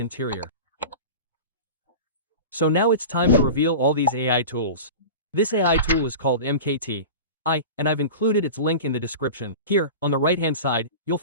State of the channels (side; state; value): both; inverted; correlation -0.32